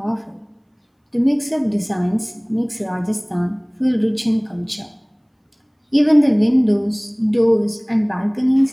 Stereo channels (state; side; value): identical; both; correlation 1.00